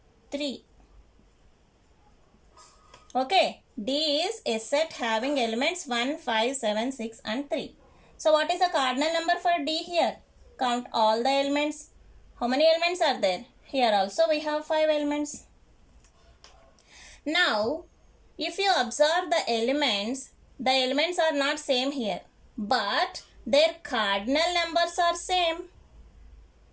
3. Okay, D is a set having elements 1, 5, 7, 6 and 3. So what is the cardinal number for D here? Count all the elements. How many elements are there? Here also we have 5 elements. Now, if you observe the elements are not same here, but their cardinal numbers are same.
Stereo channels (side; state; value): both; identical; correlation 1.00